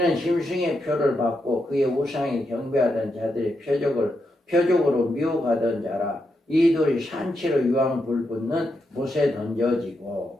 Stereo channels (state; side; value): normal; both; correlation 0.83